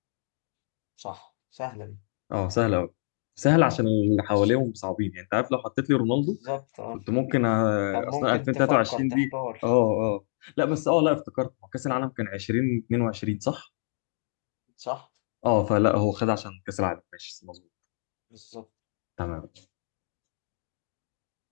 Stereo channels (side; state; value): right; silent; 60 dB below the other